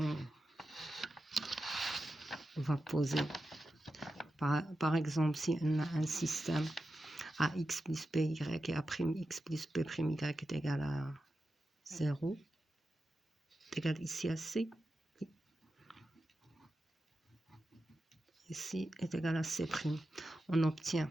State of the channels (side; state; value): both; normal; correlation 0.91